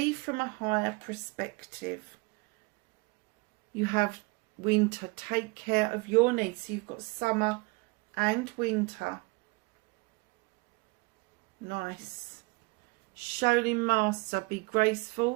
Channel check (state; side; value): quieter; left; 26.1 dB